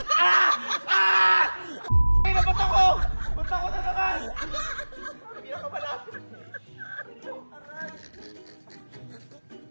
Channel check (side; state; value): both; inverted; correlation -1.00